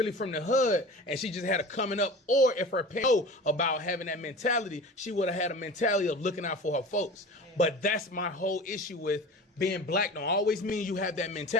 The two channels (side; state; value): both; normal; correlation 0.37